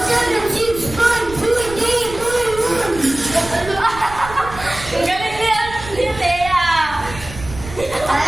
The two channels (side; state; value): right; noise; rumble, 14 dB below the sound